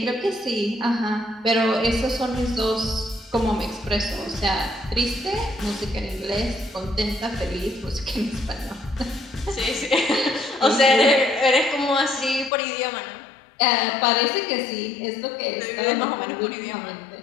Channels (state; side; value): drops out; right; at 12.5 s